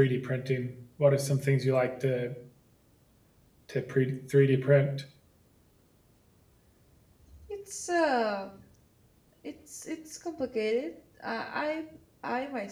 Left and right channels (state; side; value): identical; both; correlation 1.00